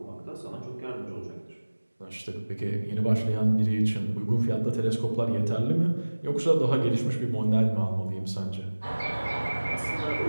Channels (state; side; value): inverted; both; correlation -1.00